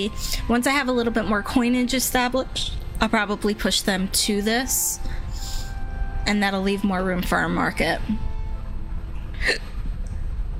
once I have a little bit more coinage established, I'll probably push them to this, and that'll leave more room for our market.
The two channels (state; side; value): identical; both; correlation 1.00